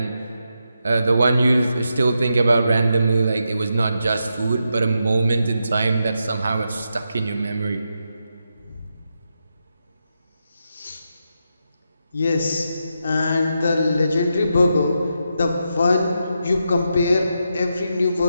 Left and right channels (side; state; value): both; inverted; correlation -0.85